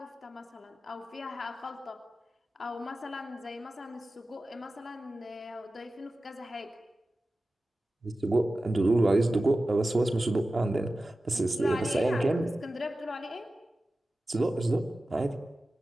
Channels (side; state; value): both; normal; correlation 0.95